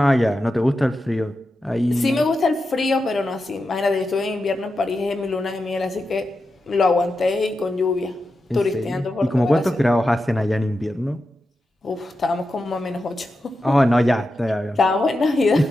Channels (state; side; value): normal; both; correlation 0.90